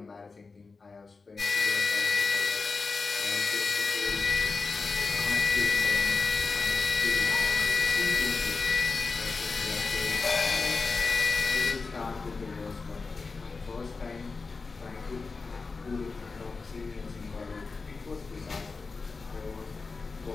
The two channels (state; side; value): quieter; right; 4.3 dB